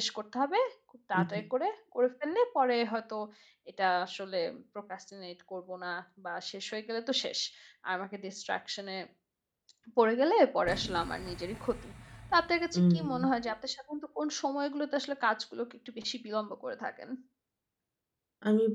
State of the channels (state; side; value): identical; both; correlation 1.00